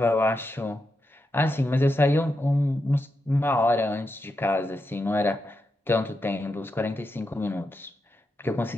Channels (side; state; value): both; normal; correlation 0.86